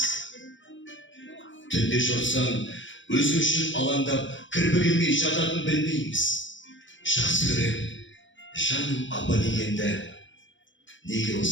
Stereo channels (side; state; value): right; late; 0.55 ms